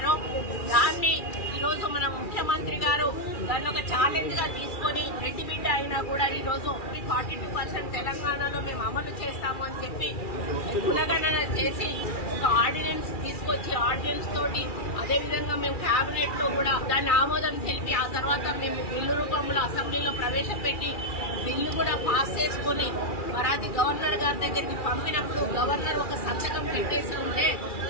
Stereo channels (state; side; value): late; right; 2.4 ms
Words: దాన్ని ఈరోజు మన ముఖ్యమంత్రి గారు దాన్ని ఒక ఛాలెంజ్ గా తీసుకొని రెడ్డి బిడ్డ అయినా కూడా ఈ రోజు 42% తెలంగాణలో మేము అమలు చేస్తాము అని చెప్పి కులగణన చేసి ఒక ఆర్డినెన్స్ తీసుకొచ్చి ఆర్డినెన్స్ తోటి అదేవిధంగా మేము కేబినెట్ లో కూడా దాన్ని ఆమోదం తెలిపి ఆ తర్వాత మేము బిల్లు రూపంలో అసెంబ్లీలో ప్రవేశపెట్టి బిల్లు కూడా పాస్ చేసుకుని మరి అది గవర్నర్ గారి దగ్గరికి పంపినప్పుడు గవర్నర్ ఒక సంతకం పెట్టేసి ఉంటే